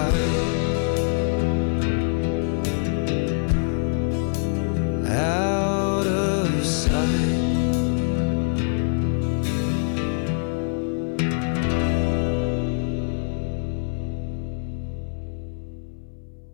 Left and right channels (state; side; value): silent; right; 62 dB below the other